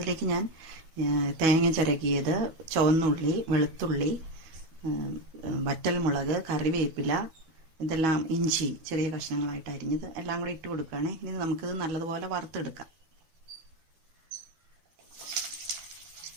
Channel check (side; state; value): left; late; 12 ms